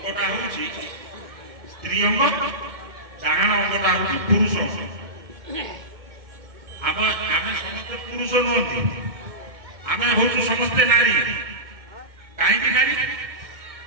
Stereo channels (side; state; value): left; late; 2.1 ms